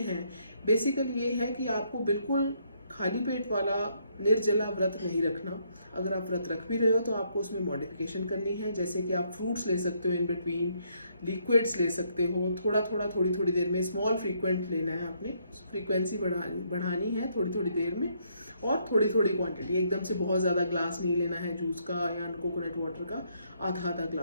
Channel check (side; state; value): both; inverted; correlation -0.72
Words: बेसिकली ये है कि आपको बिल्कुल खाली पेट वाला निर्जला व्रत नहीं रखना। अगर आप व्रत रख भी रहे हो तो आपको उसमें मॉडिफिकेशन करनी है, जैसे कि आप फ्रूट्स ले सकते हो इन बिटवीन, लिक्विड्स ले सकते हो, थोड़ा थोड़ा थोड़ी थोड़ी देर में, स्मॉल फ्रीक्वेंट लेना है, आपने फ्रीक्वेंसी बढ़ानी है थोड़ी थोड़ी देर में, और थोड़ी थोड़ी क्वांटिटी। एकदम से बहुत ज़्यादा ग्लास नहीं लेना है जूस का या कोकोनट वाटर का, आधा आधा